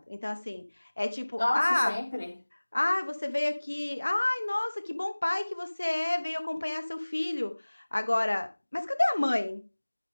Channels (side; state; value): both; inverted; correlation -1.00